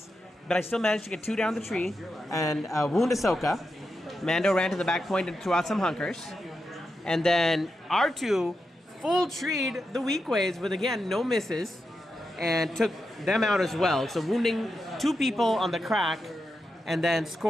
but I still managed to get 2 down the tree and wound Ahsoka. Mando ran to the back point and threw out some hunkers. And then R2 full treed the weak ways with, again, no misses, and took them out as well. So wounding 2 people on the crack and then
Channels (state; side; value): normal; both; correlation 0.87